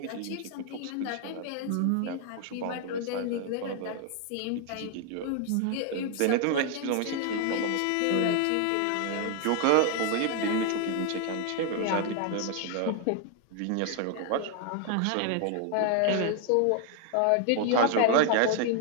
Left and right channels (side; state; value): both; different; correlation 0.00